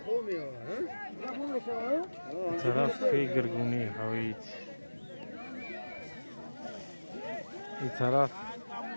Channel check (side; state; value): both; inverted; correlation -1.00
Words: طرف خیلی گرگونی هوید این طرف